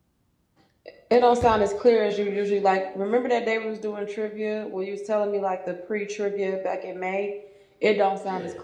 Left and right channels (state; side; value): identical; both; correlation 1.00